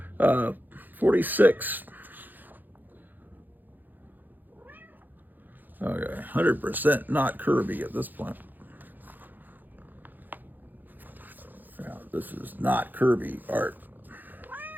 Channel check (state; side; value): late; left; 0.087 ms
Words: 46. Okay, 100% not Kirby at this point. Yeah, this is not Kirby art.